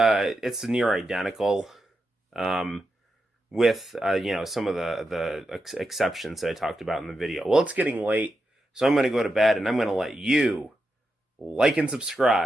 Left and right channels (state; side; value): normal; both; correlation 0.87